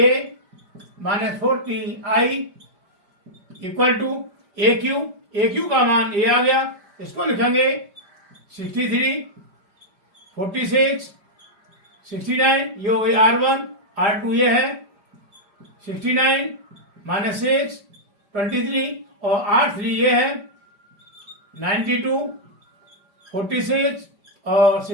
minus 40I equal to AQ का मान ये आ गया, इसको लिखेंगे 63 46 69, ये हो गई R1 R2 ये है 69 माइनस 6 23 और R3 ये है 92 46 और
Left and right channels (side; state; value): left; late; 5.1 ms